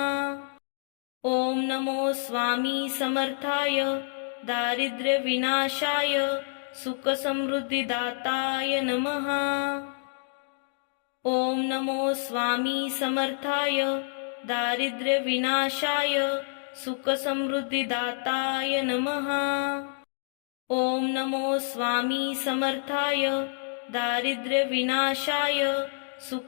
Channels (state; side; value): silent; right; digital silence